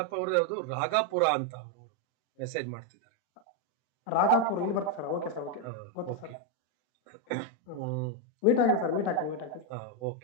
ಅವ್ರದ್ದು ಯಾವುದು ರಾಗಾಪುರ ಅಂತ ಅವರು ಮೆಸೇಜ್ ಮಾಡ್ತಿದ್ದಾರೆ. ರಾಗಾಪುರ ಇಲ್ಲಿ ಬರುತ್ತೆ ಸರ್. ಓಕೆ ಸರ್, ಓಕೆ ಗೊತ್ತು ಓಕೆ. ಸರ್. ಮೀಟ್ ಆಗಿ ಸರ್, ಮೀಟ್ ಆಗ್ತೀನಿ.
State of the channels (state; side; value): late; right; 40 ms